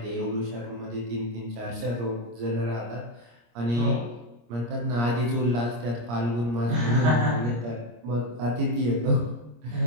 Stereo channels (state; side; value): late; left; 25 ms